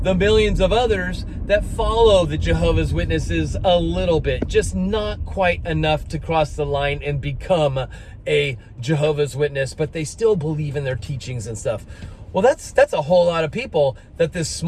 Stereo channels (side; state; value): both; identical; correlation 1.00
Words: the millions of others that follow the Jehovah's Witnesses a little bit, just not quite enough to cross the line and become a Jehovah's Witness, but they still believe in their teachings and stuff. Well, that's a whole lot of people that this